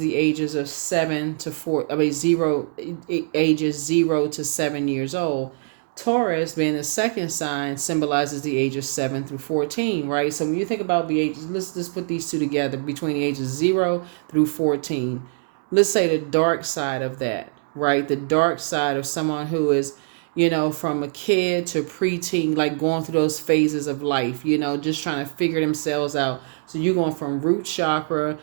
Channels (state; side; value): silent; left; digital silence